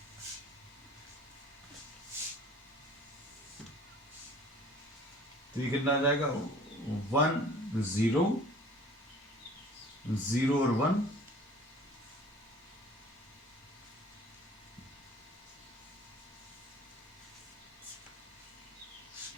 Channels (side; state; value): both; normal; correlation 0.48